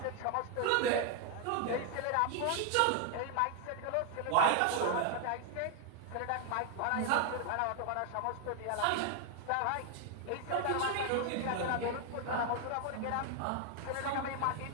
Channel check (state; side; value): different; both; correlation 0.00